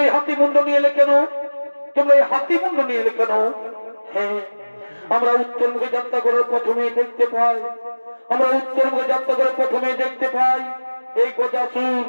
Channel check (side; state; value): both; inverted; correlation -1.00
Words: এই হাতি মুন্ড নিয়ে এলে কেন, তোমরা এই হাতি মুন্ড নিয়ে এলে কেন? হ্যাঁ, আমরা উত্তর মুখে যাত্রা করার প্রথমে দেখতে পাই, আমরা উত্তর মুখে যাত্রা করে প্রথমে দেখতে পাই এই গজাসুর